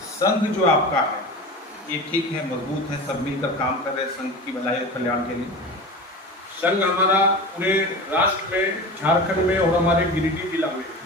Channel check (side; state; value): both; normal; correlation 0.31